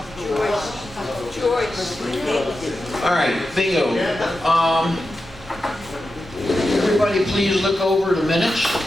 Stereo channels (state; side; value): normal; both; correlation 0.91